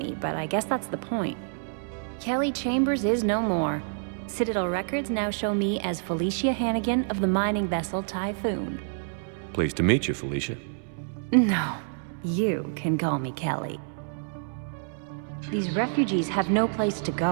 but I guess that's the point. Kelly Chambers is no more. Citadel records now show me as Felicia Hannigan of the mining vessel Typhoon. Pleased to meet you, Felicia. No, you can call me Kelly. These refugees have no place to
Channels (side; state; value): left; silent; 60 dB below the other